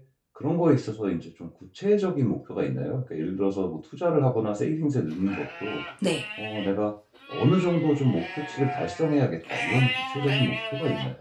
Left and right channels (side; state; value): both; identical; correlation 1.00